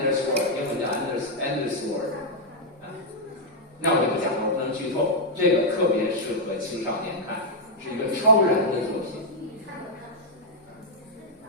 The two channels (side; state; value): both; normal; correlation -0.03